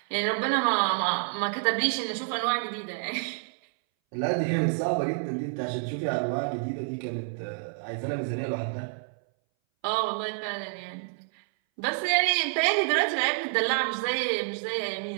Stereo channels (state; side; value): silent; left; 59 dB below the other